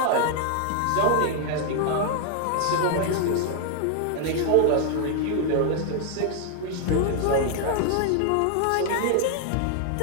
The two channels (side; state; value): both; different; correlation 0.00